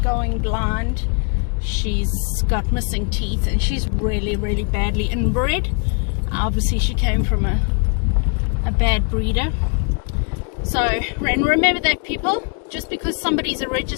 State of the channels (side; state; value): right; quieter; 38.6 dB